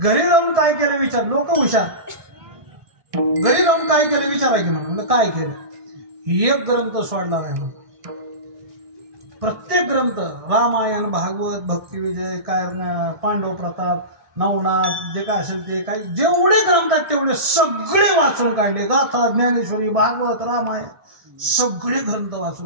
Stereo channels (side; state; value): left; late; 1.7 ms